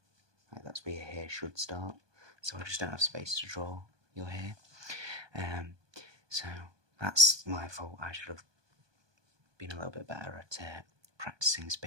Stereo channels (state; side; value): late; left; 1.2 ms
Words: Like, that's where your hair should start. So I just don't have space to draw your hair. So that's my fault. I should have been a little bit better at practicing